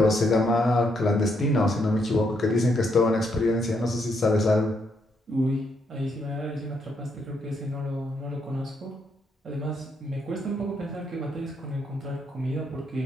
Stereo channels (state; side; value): normal; both; correlation 0.76